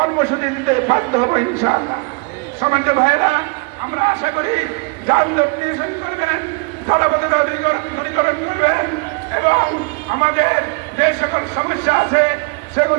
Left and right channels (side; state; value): left; quieter; 30.5 dB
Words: দিতে বাধ্য হবো ইনশাআল্লাহ। সম্মানিত ভাইয়েরা, আমরা আশা করি যানজট নিরসন করবেন, জলাবদ্ধতা দূরীকরণ করবেন এবং আমাদের যে সকল সমস্যা আছে